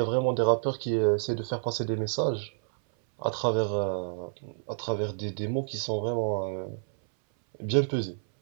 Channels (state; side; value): silent; left; 58 dB below the other